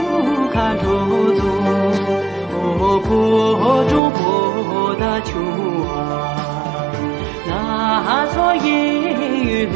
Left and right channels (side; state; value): left; drops out; at 4.0 s